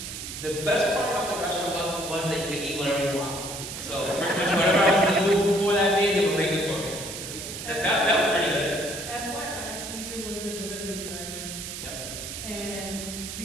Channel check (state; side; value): noise; right; hiss, 8 dB below the sound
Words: the best part about the restaurant was that you could eat whatever you want. So pretty much whatever I was in the mood for that day, they would make it for me. That was pretty good. FYI, Caesar was the delivery driver. Yep. And